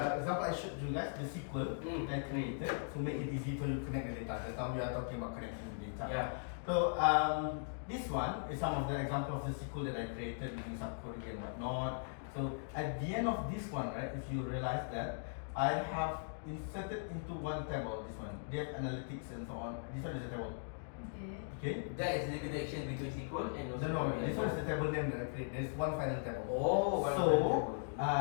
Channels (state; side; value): silent; right; digital silence